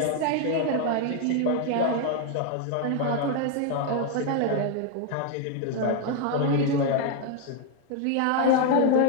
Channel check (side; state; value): both; different; correlation 0.00